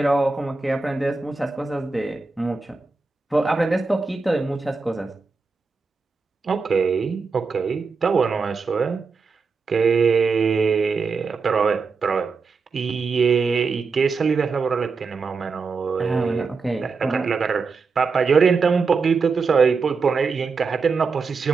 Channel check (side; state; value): left; quieter; 4.7 dB